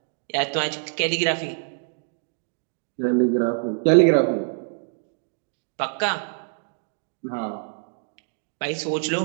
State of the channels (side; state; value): left; silent; digital silence